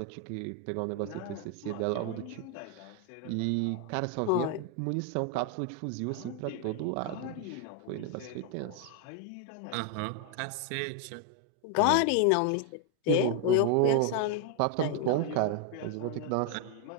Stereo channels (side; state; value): both; different; correlation 0.01